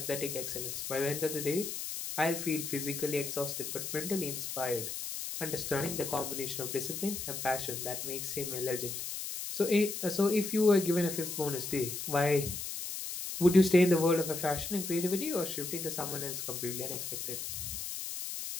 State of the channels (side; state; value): left; noise; hiss, 5 dB below the sound